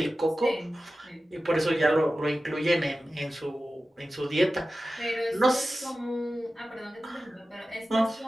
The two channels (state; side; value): normal; both; correlation 0.94